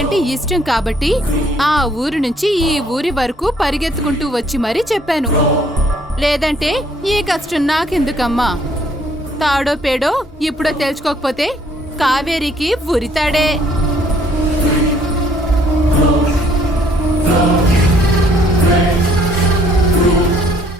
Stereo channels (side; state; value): both; normal; correlation 0.63